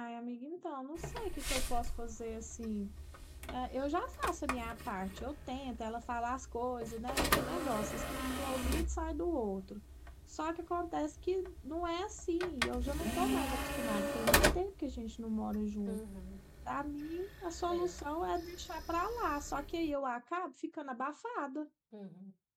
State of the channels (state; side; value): identical; both; correlation 1.00